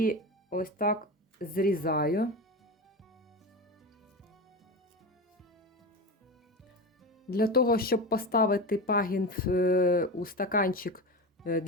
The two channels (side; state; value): both; normal; correlation 0.23